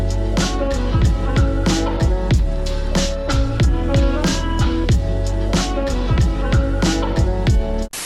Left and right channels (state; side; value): identical; both; correlation 1.00